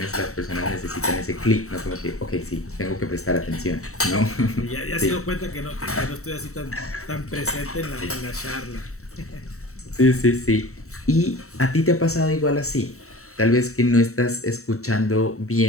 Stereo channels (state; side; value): late; right; 0.64 ms